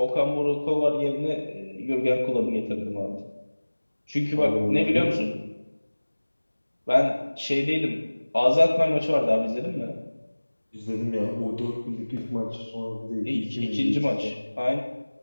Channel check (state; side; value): inverted; both; correlation -1.00